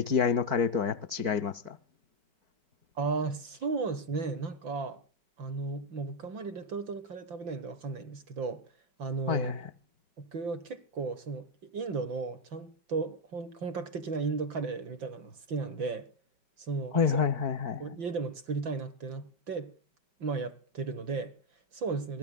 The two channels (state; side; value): late; left; 5.9 ms